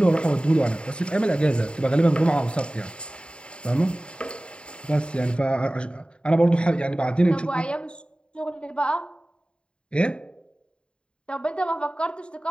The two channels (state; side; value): late; right; 0.053 ms